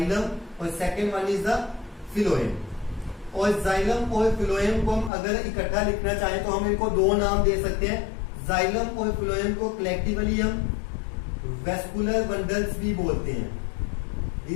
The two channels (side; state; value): right; drops out; at 5.1 s